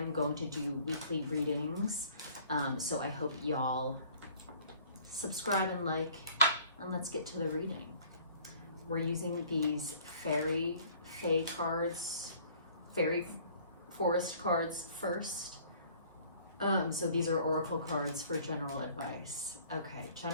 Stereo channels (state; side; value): inverted; both; correlation -0.54